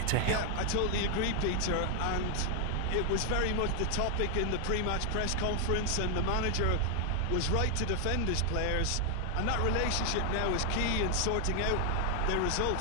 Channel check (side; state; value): both; different; correlation 0.00